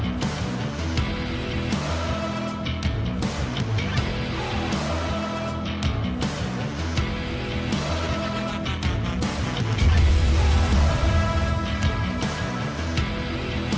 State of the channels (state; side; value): identical; both; correlation 1.00